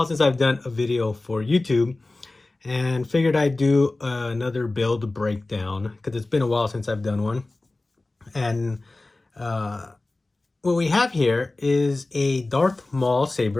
since I've done a video for YouTube, and figured I'd do another build breakdown because it's been a while since I've done one. And what we have here is a Darth Maul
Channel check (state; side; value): quieter; right; 3.0 dB